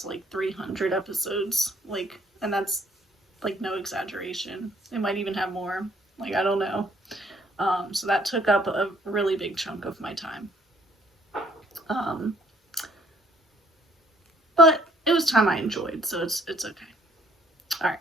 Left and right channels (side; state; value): both; normal; correlation 0.62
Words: like 300 episodes, like, and that's like no exaggeration. It might even have more. Like, I don't know. So that took up a really big chunk of my time. But it was time I enjoyed, so it's okay. All right,